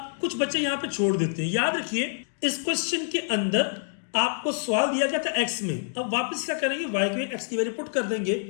कुछ बच्चे यहाँ पे छोड़ देते हैं। याद रखिए इस क्वेश्चन के अंदर आपको सवाल दिया गया था x में, अब वापस क्या करेंगे y के x की वैल्यू पुट कर देंगे।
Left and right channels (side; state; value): right; silent; digital silence